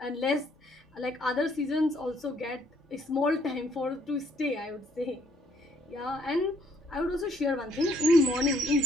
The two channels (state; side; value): normal; both; correlation 0.66